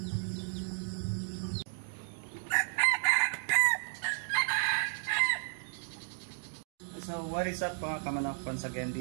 So what is up mga kamanok? Once again,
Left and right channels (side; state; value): left; silent; digital silence